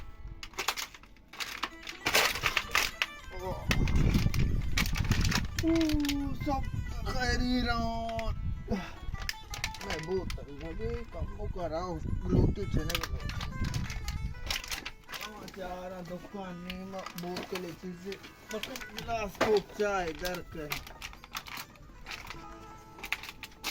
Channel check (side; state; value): both; identical; correlation 1.00